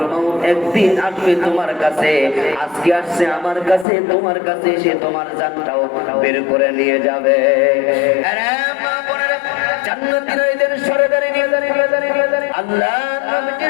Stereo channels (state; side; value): drops out; right; at 3.9 s